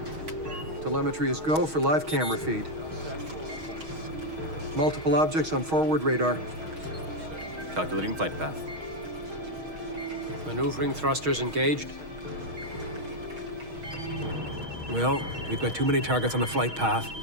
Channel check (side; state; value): left; late; 6.3 ms